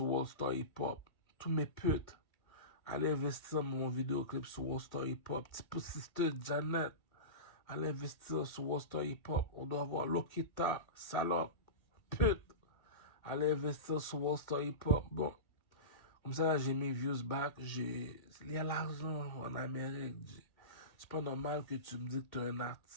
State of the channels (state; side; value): late; right; 1.7 ms